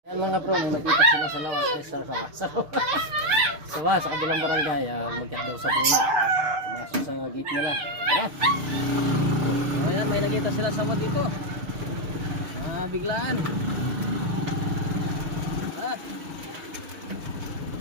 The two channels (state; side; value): late; left; 6.6 ms